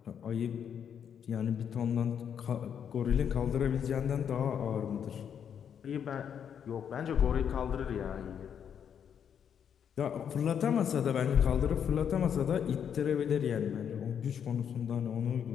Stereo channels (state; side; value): quieter; right; 8.2 dB